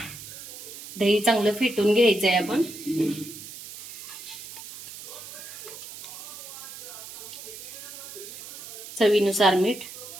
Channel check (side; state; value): right; noise; hiss, 13 dB below the sound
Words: दही चांगलं फेटून घ्यायचं आहे आपण. चवीनुसार मीठ.